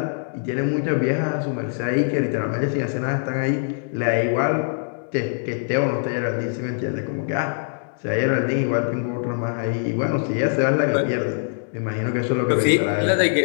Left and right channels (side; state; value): right; silent; digital silence